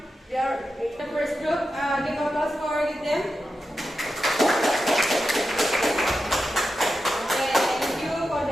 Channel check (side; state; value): both; normal; correlation 0.90